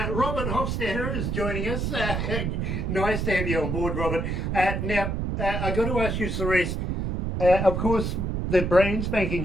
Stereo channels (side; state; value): right; noise; rumble, 1 dB below the sound